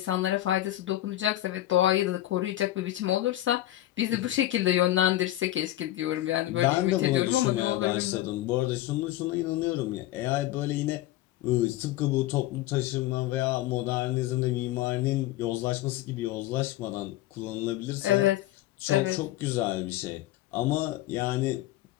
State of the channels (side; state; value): right; quieter; 15.1 dB